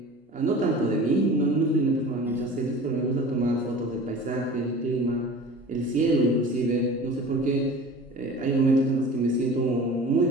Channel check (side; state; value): both; normal; correlation 0.40